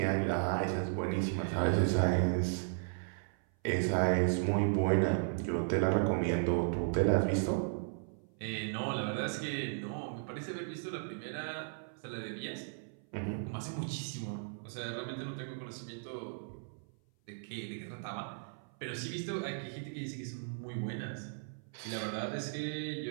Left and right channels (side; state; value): left; silent; 54 dB below the other